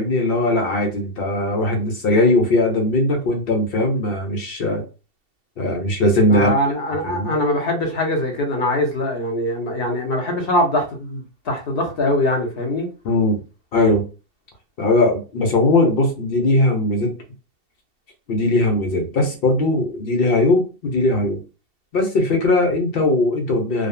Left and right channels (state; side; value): late; right; 2.7 ms